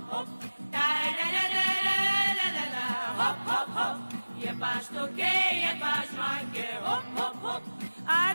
hop. Daj, da, da, da, da, da, da, da, hop, hop, hop. Je pa štuke, je pa žmanke, hop, hop, hop. A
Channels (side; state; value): both; inverted; correlation -1.00